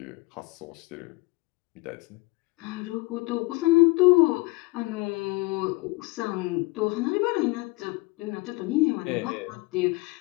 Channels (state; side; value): quieter; right; 24.4 dB